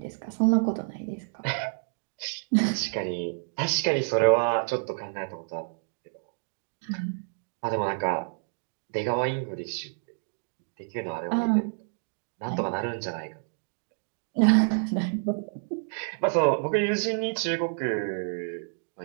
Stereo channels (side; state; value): left; silent; digital silence